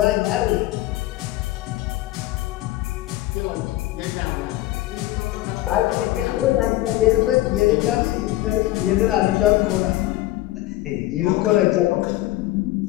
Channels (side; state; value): right; quieter; 16.5 dB